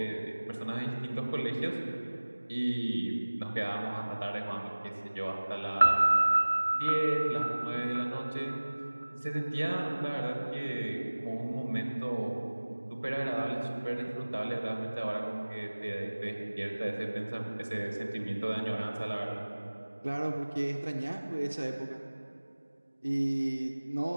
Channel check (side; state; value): both; inverted; correlation -1.00